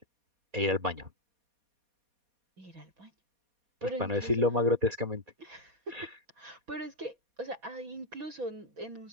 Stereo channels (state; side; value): late; left; 4.2 ms